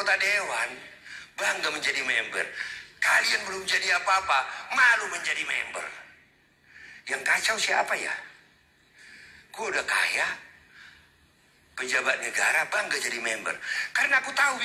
dewan, bangga menjadi member. Kalian belum jadi apa-apa, malu menjadi member. Yang kacau siapa ya? Gue udah kaya, pejabat negara, bangga jadi member. Karena aku tahu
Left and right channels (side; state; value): both; identical; correlation 1.00